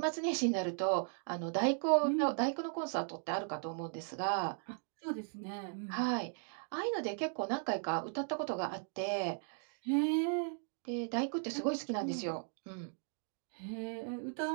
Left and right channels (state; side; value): silent; left; 53 dB below the other